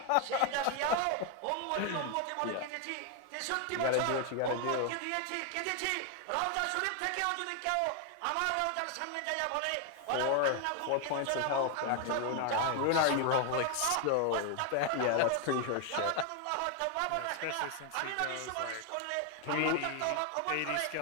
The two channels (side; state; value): both; different; correlation 0.00